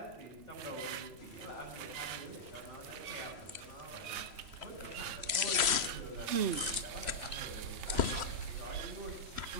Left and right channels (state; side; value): late; left; 3.0 ms